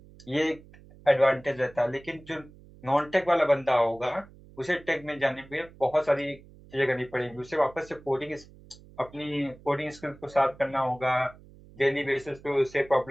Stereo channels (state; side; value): noise; right; hum, 22 dB below the sound